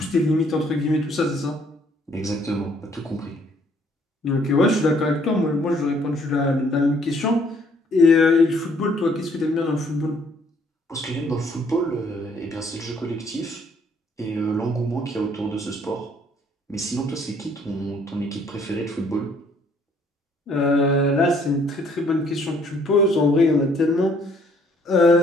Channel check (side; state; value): both; normal; correlation 0.63